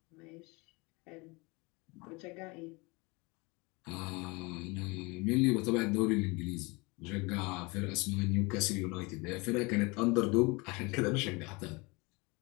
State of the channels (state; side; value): quieter; right; 26.5 dB